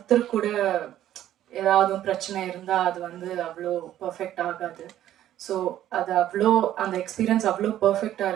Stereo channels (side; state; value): left; quieter; 12.3 dB